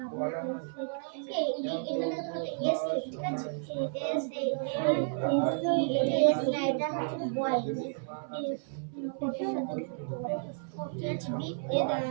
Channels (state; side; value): silent; left; 57 dB below the other